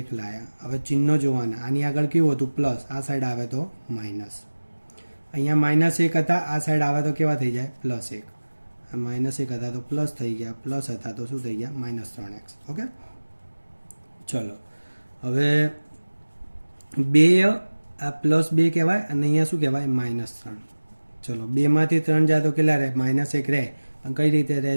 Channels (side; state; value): both; inverted; correlation -1.00